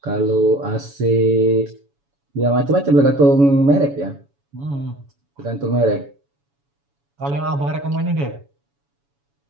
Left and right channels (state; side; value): late; left; 7.1 ms